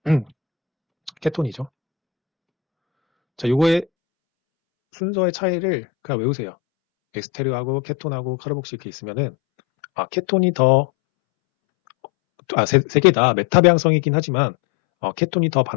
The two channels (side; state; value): right; drops out; at 3.9 s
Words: 케톤이죠. 자, 요거의 순서의 차이를 그냥 외우세요. 에스테르하고 케톤하고 카르복시 이렇게 있으면은, 케톤이 더, 세 개 다 메타 배양성이긴 하지만, 케톤이 더